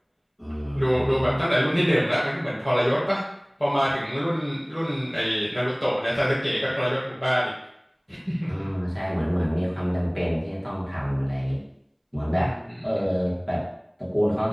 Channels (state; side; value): identical; both; correlation 1.00